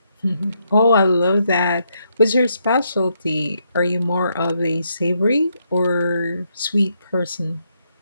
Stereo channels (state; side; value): inverted; both; correlation -0.78